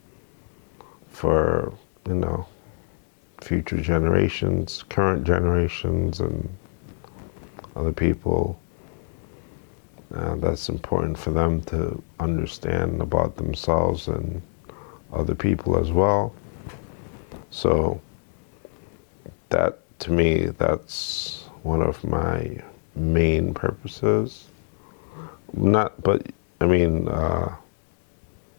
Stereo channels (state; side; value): silent; right; 62 dB below the other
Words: for future generations, current generations, and other people. That's important for them to understand about themselves and other people as well. So that, to me, that's one of my main purposes. I